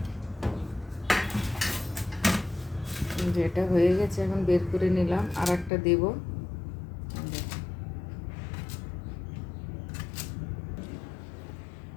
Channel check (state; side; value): drops out; right; at 5.7 s